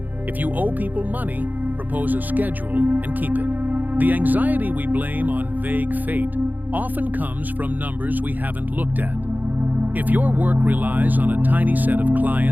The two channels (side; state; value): left; late; 0.083 ms